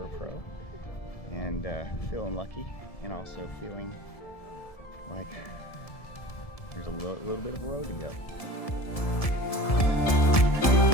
pro, and feeling lucky, and also feeling like there's a little bit of a road to go.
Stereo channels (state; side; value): late; right; 1.7 ms